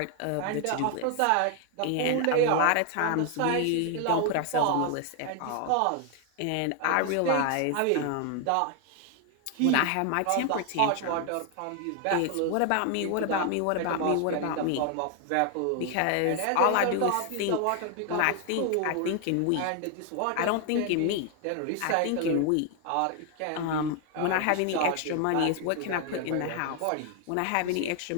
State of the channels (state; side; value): different; both; correlation 0.01